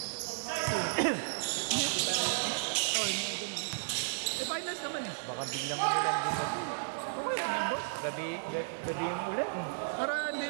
Oh, yung mga ganun. Eh, finals naman eh. Baka biglang ulan din gabi. Okay lang yan, boss. Gabi yung ulan. Para hindi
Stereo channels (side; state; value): left; silent; 55 dB below the other